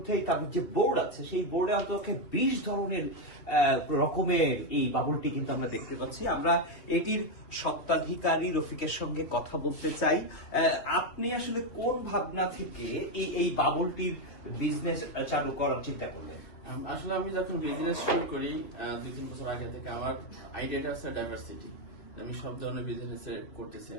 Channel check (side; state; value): right; late; 3.1 ms